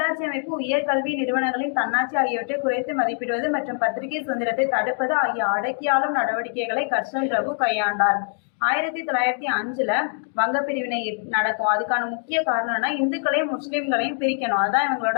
அமைப்பு, உயர்கல்வி நிறுவனங்களின் தன்னாட்சி ஆகியவற்றை குறைத்து மதிப்பிடுவது மற்றும் பத்திரிகை சுதந்திரத்தை தடுப்பது ஆகிய அடக்கியாளும் நடவடிக்கைகளை கர்ஷன் பிரபு கையாண்டார். 1905 வங்க பிரிவினை நடக்கும். அதுக்கான முக்கிய காரணம்னா இந்துக்களையும் முஸ்லிம்களையும் பிரிக்கணும். அதான்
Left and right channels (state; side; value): silent; right; 55 dB below the other